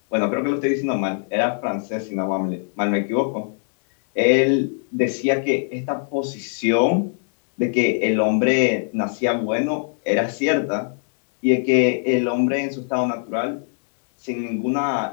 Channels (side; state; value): right; silent; 64 dB below the other